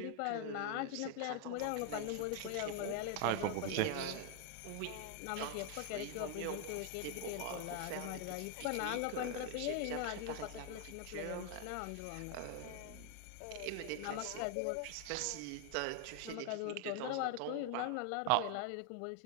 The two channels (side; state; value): both; different; correlation 0.01